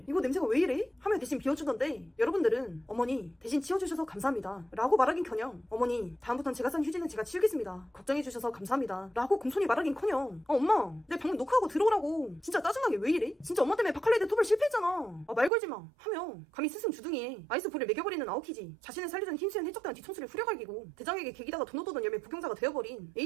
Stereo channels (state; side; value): drops out; left; at 15.5 s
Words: 이거 냄새가 왜 이래? 하며 대신 비워주던데, 여러분들은 어머니 대신 치워주셔서 감사합니다 라고 말하긴커녕 어머니 다음부턴 제가 싼 휴지는 제가 치우겠습니다, 걱정해주셔서 감사합니다 라고 공손히 말하긴커녕 엄마 내 방금 녹화하고 들어오라고, 진짜 짜증나게 왜 이래? 진짜 엄마 때문에 바칼레이드 토벌 실패했잖아, 말 걸지마 하며 감히 스승 주둥이에 아이스볼을 매겨버리는 아오키지, 자신을 살려준 흰수연 해적단 뒤통수를 후려갈기고 대장에게 개기다가 돈 얻어던 열매 복용자가 되어버린